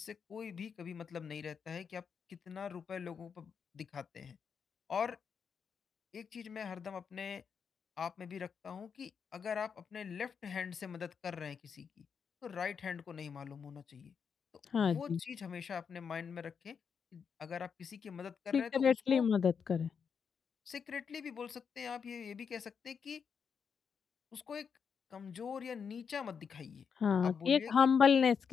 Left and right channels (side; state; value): right; quieter; 6.5 dB